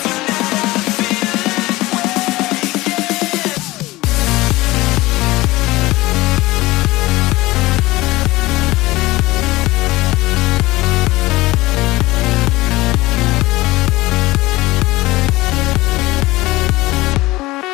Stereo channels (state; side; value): quieter; right; 19.5 dB